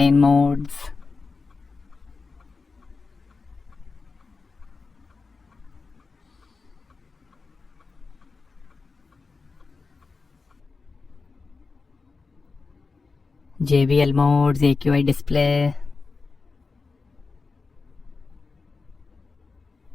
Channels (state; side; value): quieter; right; 4.3 dB